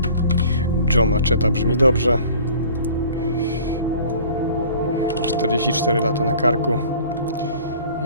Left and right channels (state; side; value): inverted; both; correlation -0.48